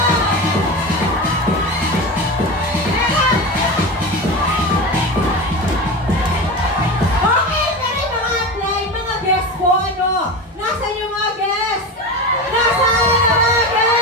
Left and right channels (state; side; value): normal; both; correlation 0.25